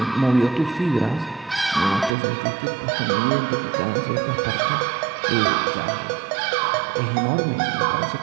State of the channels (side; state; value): left; drops out; at 2.1 s